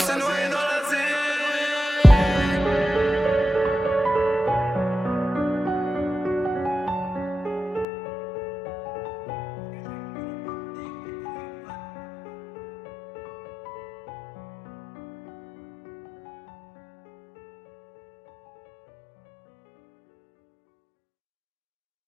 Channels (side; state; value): right; drops out; at 7.9 s